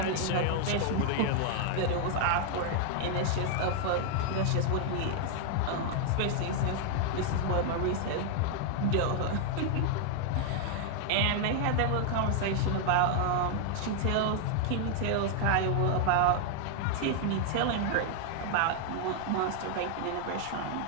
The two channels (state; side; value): different; both; correlation 0.00